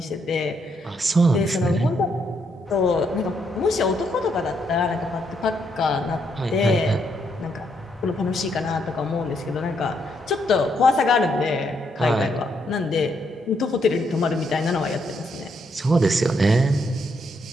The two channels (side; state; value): both; normal; correlation 0.75